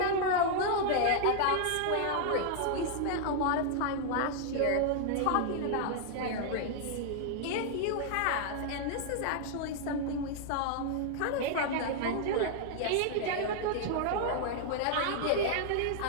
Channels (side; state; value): both; different; correlation 0.00